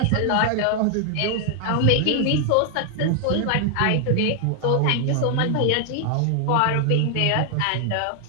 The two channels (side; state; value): both; different; correlation 0.00